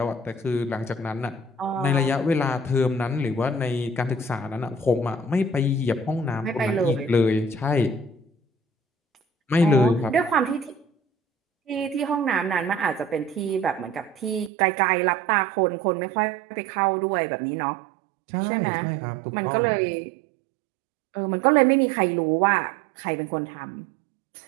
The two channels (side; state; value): left; drops out; at 14.5 s